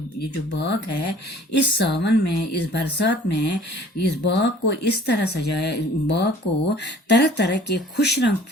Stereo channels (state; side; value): normal; both; correlation 0.51